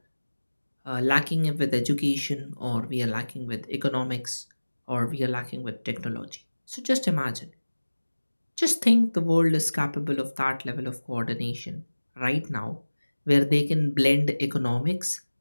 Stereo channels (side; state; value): both; inverted; correlation -1.00